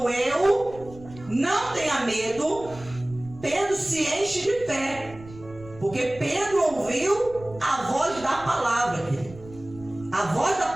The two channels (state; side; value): noise; right; rumble, 18 dB below the sound